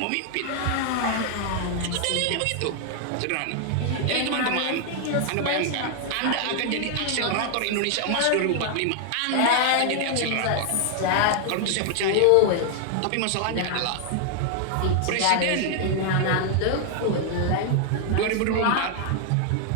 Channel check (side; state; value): both; different; correlation 0.00